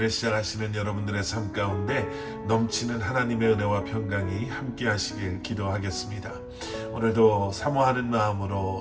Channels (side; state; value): both; identical; correlation 1.00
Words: 시작하시는 여러분들의 삶 가운데 넘치는 하나님의 은혜와 평강이 함께 하시길 기도하겠습니다. 오늘도 사모하는